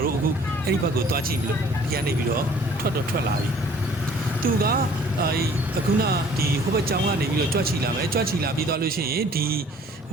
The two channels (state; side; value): normal; both; correlation 0.54